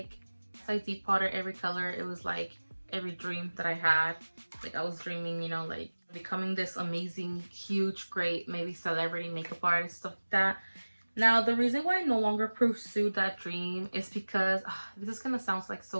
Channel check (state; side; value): inverted; both; correlation -1.00